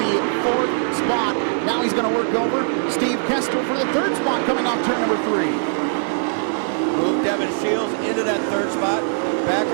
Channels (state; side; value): silent; left; digital silence